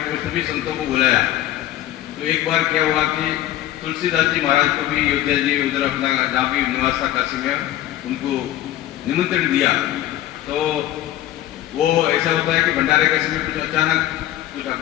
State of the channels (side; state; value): right; quieter; 13.7 dB